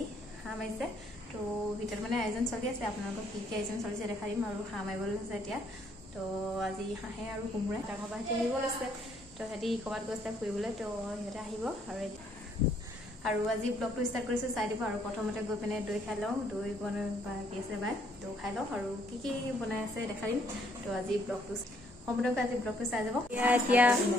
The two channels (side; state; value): right; noise; hum, 24 dB below the sound